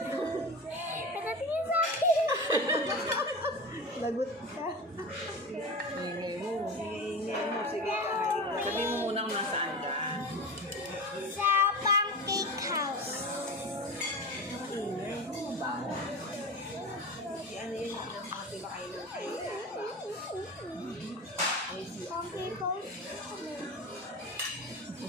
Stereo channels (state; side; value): normal; both; correlation 0.28